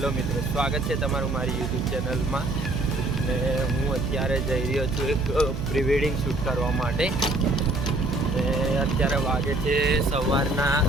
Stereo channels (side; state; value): right; noise; hum, 5 dB below the sound